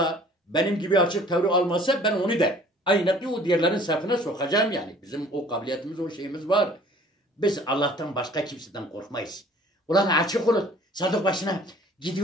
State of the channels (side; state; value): both; normal; correlation 0.52